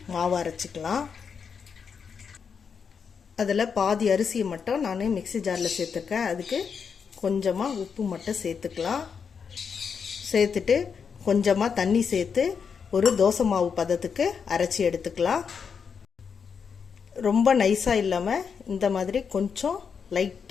மாவு அரைச்சிக்கலாம். அதில் பாதி அரிசியை மட்டும் நான் மிக்ஸி ஜாரில் சேர்த்துருக்கேன். அதுக்கு கொஞ்சமாக உப்பு மட்டும் சேர்த்துக்கலாம். சேர்த்துட்டு கொஞ்சமாக தண்ணி சேர்த்து ஒரு தோசை மாவு பதத்துக்கு அரைச்சி எடுத்துக்கலாம். ரொம்ப நைஸாக இல்லாமல் இந்த மாதிரி கொஞ்சம்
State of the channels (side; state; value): right; quieter; 6.3 dB